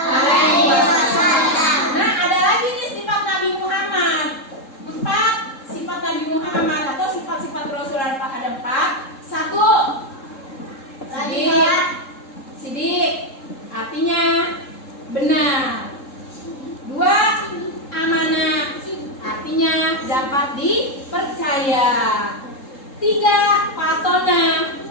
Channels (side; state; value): right; late; 3.7 ms